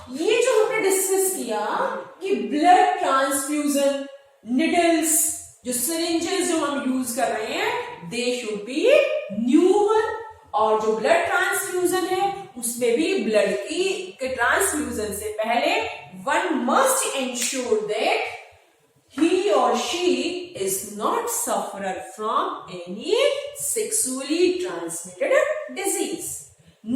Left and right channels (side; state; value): both; identical; correlation 1.00